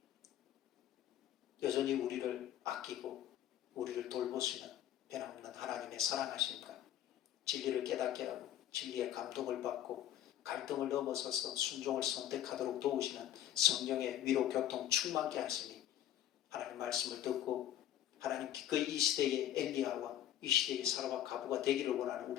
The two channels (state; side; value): quieter; right; 11.6 dB